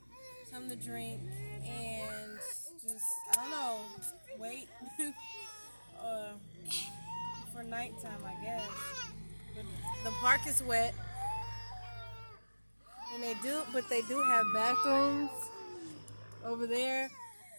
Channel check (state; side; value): inverted; both; correlation -1.00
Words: something to drink, and just, I don't know, wait for nighttime, I guess. But the park is wet, and they do have bathrooms over there,